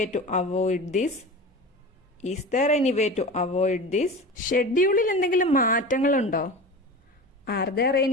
to avoid this? Is there any way to avoid this? ഷെഡ്യൂളിൽ എന്തെങ്കിലും മാറ്റങ്ങളുണ്ടോ? Are there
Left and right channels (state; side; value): normal; both; correlation 0.32